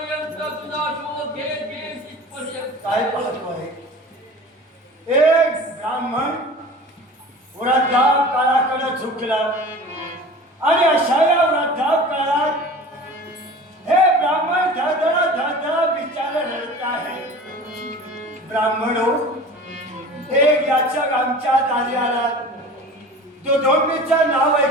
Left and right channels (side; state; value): both; normal; correlation 0.39